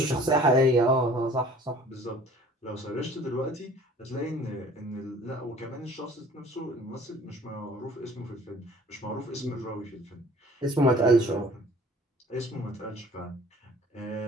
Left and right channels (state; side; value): normal; both; correlation 0.50